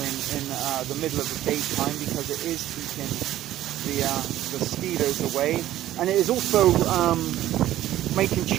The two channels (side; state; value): left; quieter; 13.6 dB